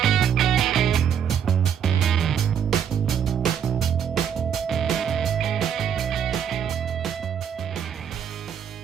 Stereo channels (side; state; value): left; quieter; 8.3 dB